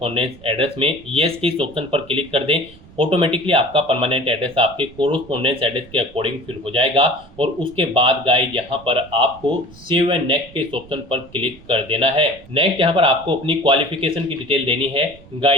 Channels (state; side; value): noise; right; rumble, 22 dB below the sound